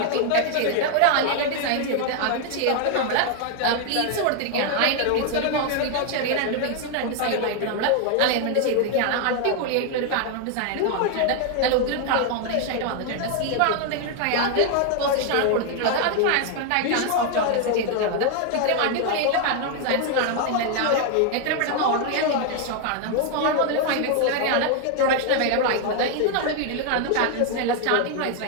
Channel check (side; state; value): both; different; correlation 0.00